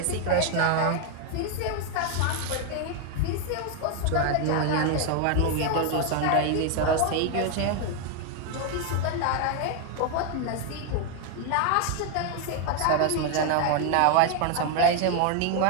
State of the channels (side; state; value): both; different; correlation 0.01